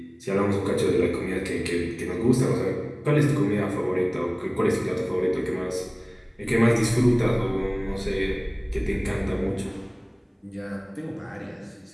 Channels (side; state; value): both; identical; correlation 1.00